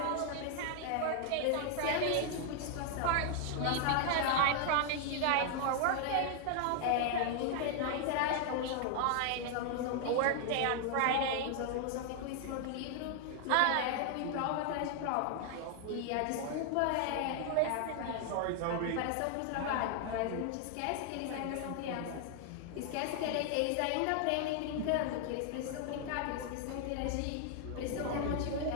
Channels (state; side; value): different; both; correlation 0.00